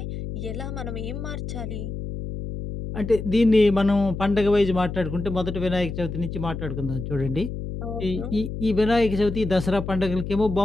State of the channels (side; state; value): left; noise; hum, 6 dB below the sound